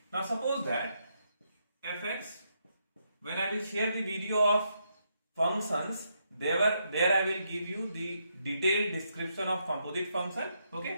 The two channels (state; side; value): inverted; both; correlation -0.78